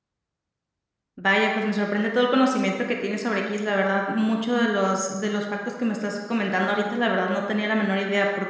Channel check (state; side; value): identical; both; correlation 1.00